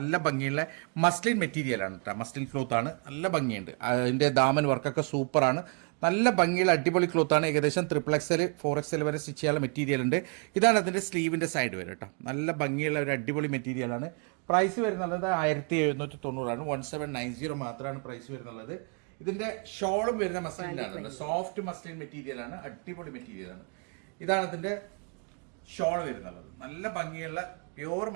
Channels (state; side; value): quieter; left; 37.7 dB